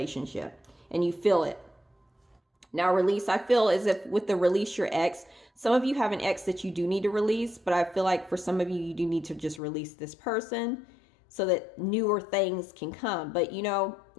and you feel it. Now release, I feel as if with the release your ex, some of you have an ex that you do need to release, but I feel like for some of you, you do need to just release this person so that newer things can come. But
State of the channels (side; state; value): right; drops out; at 9.6 s